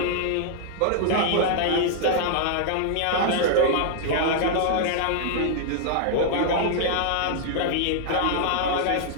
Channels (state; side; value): different; both; correlation -0.01